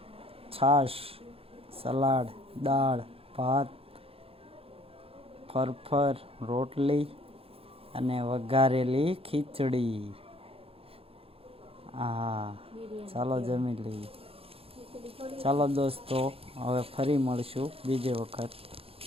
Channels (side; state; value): left; late; 0.27 ms